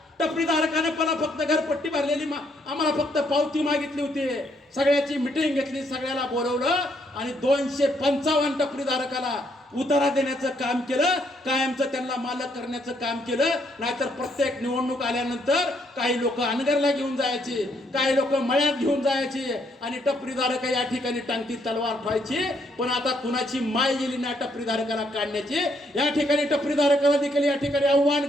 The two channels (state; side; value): normal; both; correlation 0.72